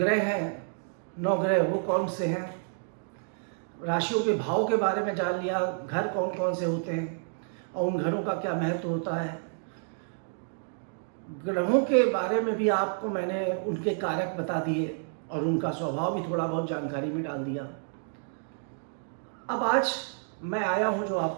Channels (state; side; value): silent; left; digital silence